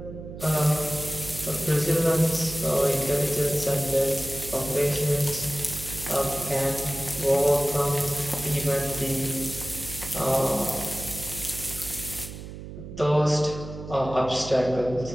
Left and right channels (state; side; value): noise; right; hum, 12 dB below the sound